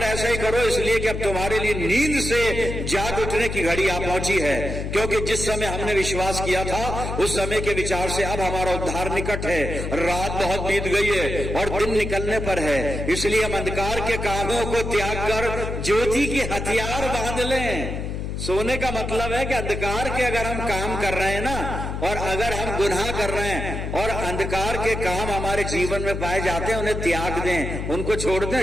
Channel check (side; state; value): left; noise; hum, 4 dB below the sound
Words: ऐसा ही करो, इसलिए कि अब तुम्हारे लिए नींद से जाग उठने की घड़ी आ पहुंची है, क्योंकि जिस समय हमने विश्वास किया था उस समय के विचार से अब हमारा उद्धार निकट है। रात बहुत बीत गई है और दिन निकलने पर है, इसलिए हम अंधकार के कामों को त्याग कर ज्योति के हथियार बांध लें। सोने का मतलब है कि अंधकार के अगर हम काम कर रहे हैं ना, और अगर हम गुनाह कर रहे हैं और अंधकार के काम हमारे जीवन में पाए जाते हैं, उन्हें त्याग दें, उनको छोड़